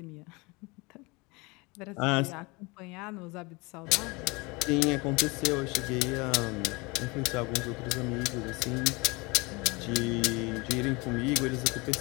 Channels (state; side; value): quieter; right; 26.2 dB